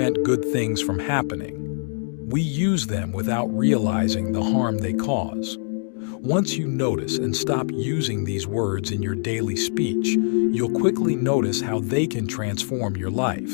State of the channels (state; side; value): silent; right; 58 dB below the other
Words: good things from happening. We use them without realizing the harm they cause. Once you notice and stop using these words in your daily speech, you'll quickly notice how they can transform your